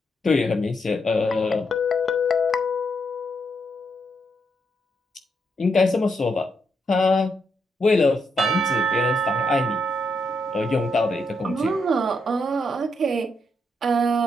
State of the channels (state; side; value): normal; both; correlation 0.79